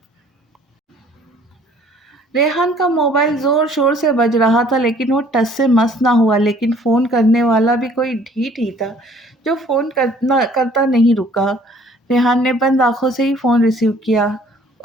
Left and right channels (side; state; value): both; normal; correlation 0.56